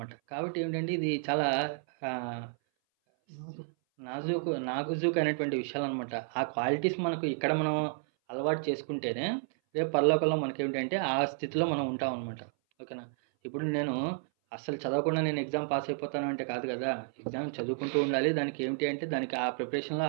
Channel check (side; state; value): left; silent; 57 dB below the other